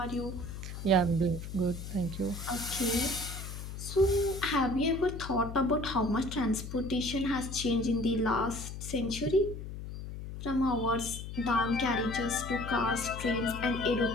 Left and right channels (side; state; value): left; noise; hum, 9 dB below the sound